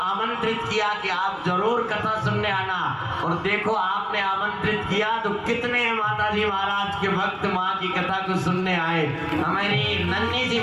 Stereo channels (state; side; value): identical; both; correlation 1.00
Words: किया कि आप जरूर कथा सुनने आना। और देखो आपने आमंत्रित किया तो कितने माताजी महाराज के भक्त माँ की कथा को सुनने आए। हमारी नन्ही सी